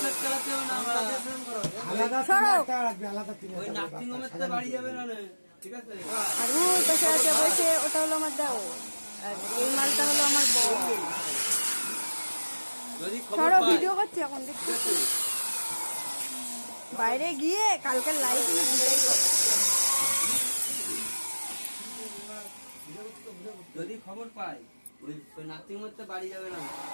আর ওই পাশে আছে বসে, ওটা হলো আমার দেও। আর এই মালটা হলো আমার বউ। সরো, ভিডিও করছি এখন, দেখছি বাইরে গিয়ে কালকের লাইভ ভিডিও করো। যদি খবর পাই ওই নাতির মধ্যে বাড়ি যাবে না,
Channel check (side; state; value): both; inverted; correlation -1.00